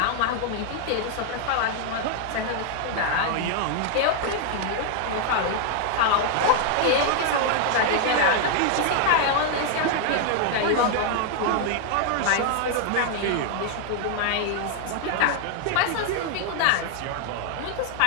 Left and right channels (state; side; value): different; both; correlation 0.00